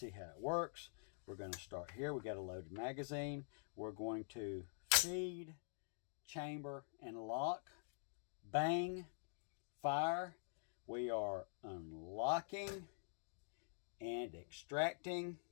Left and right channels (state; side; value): silent; right; digital silence